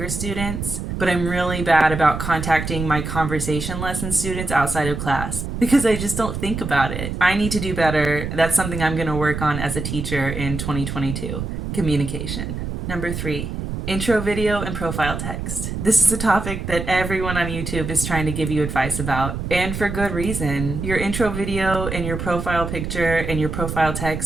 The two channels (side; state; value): right; noise; rumble, 5 dB below the sound